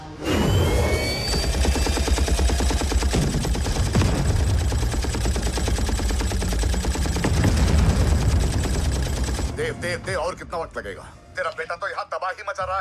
देव, और कितना वक्त लगेगा? तेरा बेटा तो यहाँ तबाही मचा रहा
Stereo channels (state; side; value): identical; both; correlation 1.00